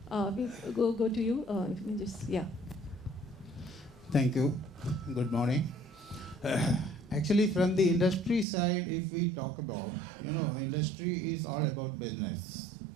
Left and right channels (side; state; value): left; drops out; at 8.5 s